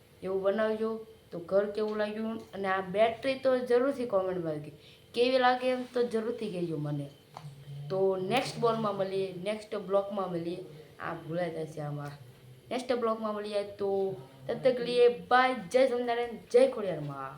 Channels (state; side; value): identical; both; correlation 1.00